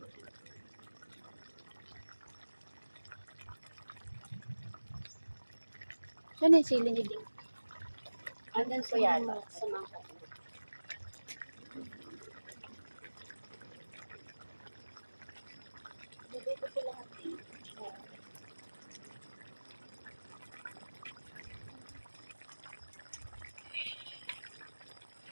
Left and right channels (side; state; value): both; inverted; correlation -1.00